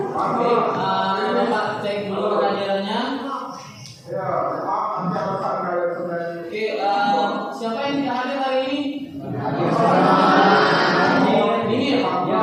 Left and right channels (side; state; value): both; identical; correlation 1.00